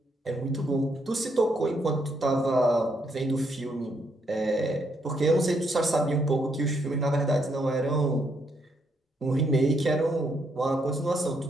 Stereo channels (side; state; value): both; normal; correlation 0.75